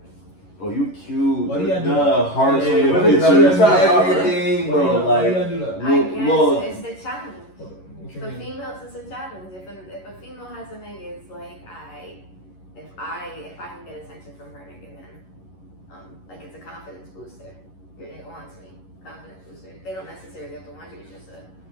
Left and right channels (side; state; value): right; late; 11 ms